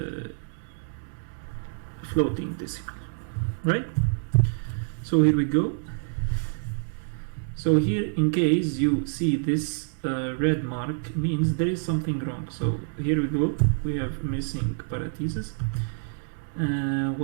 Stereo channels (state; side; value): silent; left; digital silence